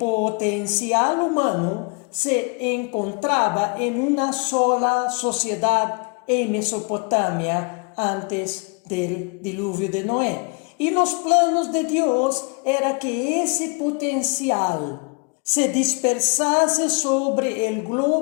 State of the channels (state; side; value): quieter; right; 33.7 dB